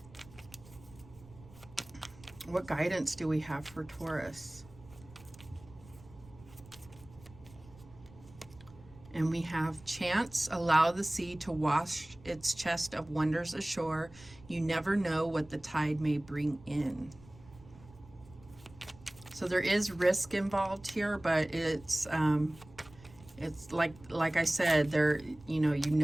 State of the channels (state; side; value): noise; right; rumble, 22 dB below the sound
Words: What guidance do we have for Taurus? And we have chance, allow the sea to wash its chest of wonders ashore. You never know what the tide may bring in. So there is risk involved here, but it's like I said, there,